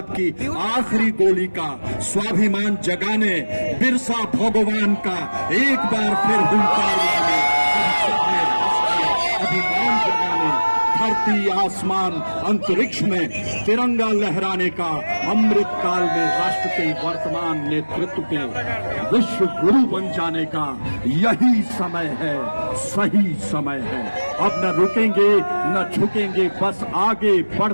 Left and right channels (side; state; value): both; inverted; correlation -1.00